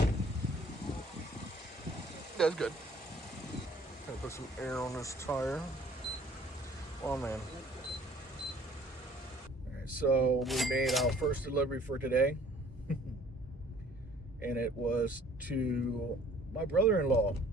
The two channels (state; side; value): normal; both; correlation 0.55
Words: that's good. Gonna put some air on this tire. Oh man. All right, so we made our first delivery for today, and it was to my brother-in-law.